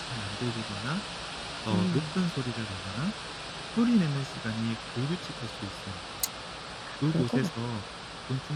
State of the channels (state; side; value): identical; both; correlation 1.00